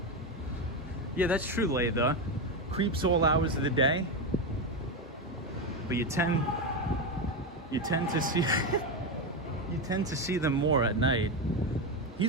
Yeah, that's true, Laytha. Creeps all hours of the day. But you tend to see you tend to see them more at night.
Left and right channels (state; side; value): normal; both; correlation 0.12